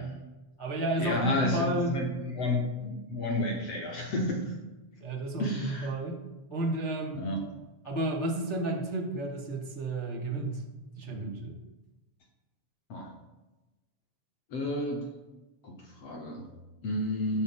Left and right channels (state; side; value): late; right; 6.7 ms